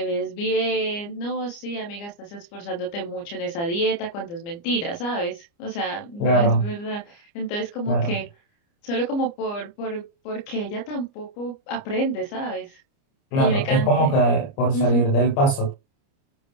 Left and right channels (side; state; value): right; late; 29 ms